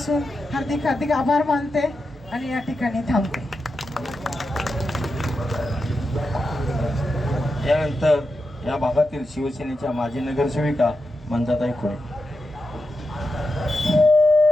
हार्दिक हार्दिक आभार मानते आणि या ठिकाणी थांबते. यानंतर या भागातील शिवसेनेच्या माजी नगरसेविका मंजाताई खुळे.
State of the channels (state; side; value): normal; both; correlation 0.88